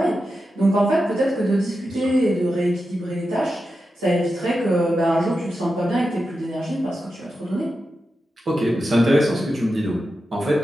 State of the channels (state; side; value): normal; both; correlation 0.90